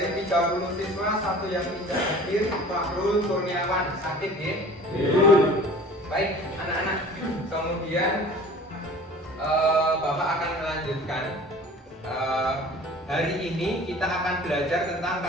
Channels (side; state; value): both; normal; correlation 0.44